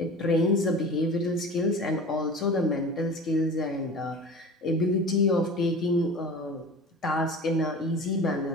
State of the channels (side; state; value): both; normal; correlation 0.36